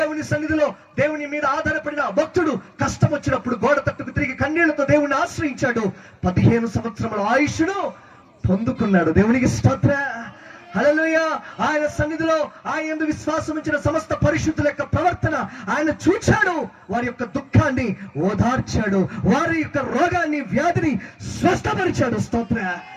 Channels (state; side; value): identical; both; correlation 1.00